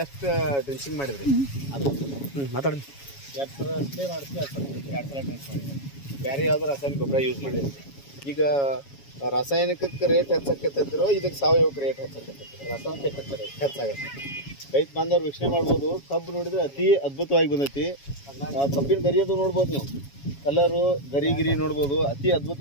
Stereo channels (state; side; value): late; right; 7.2 ms